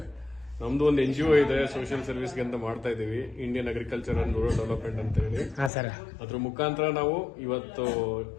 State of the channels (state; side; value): drops out; right; at 5.7 s